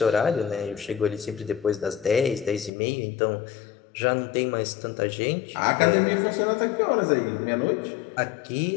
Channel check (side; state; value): right; drops out; at 2.7 s